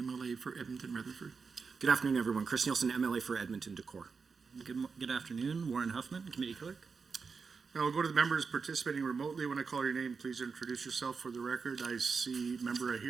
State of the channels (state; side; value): quieter; left; 5.1 dB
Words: for Edmonton Rutherford. Good afternoon, everyone. Chris Nielsen, MLA for Edmonton Decor. Good afternoon, Warren Huffman, Committee Clerk. Now we'll go to the members participating remotely. When I call your name, please introduce yourself for the record. I see member right